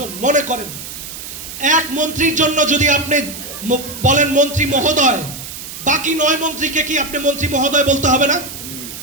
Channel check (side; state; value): right; noise; hiss, 11 dB below the sound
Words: মনে করেন এক মন্ত্রীর জন্য যদি আপনি বলেন মন্ত্রী মহোদয়, বাকি 9 মন্ত্রীকে কি আপনি মন্ত্রী মহোদয় বলতে হবে না?